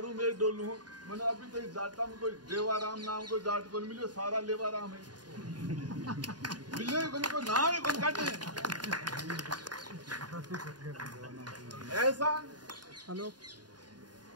में डोलू हूँ। मैंने अभी कहीं जाटा में कोई देवाराम नाम कोई जाट को मिले, सारा लेवाराम है। मिले को नाम ही कौन काटे। ऐसा हेलो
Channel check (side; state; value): left; late; 0.70 ms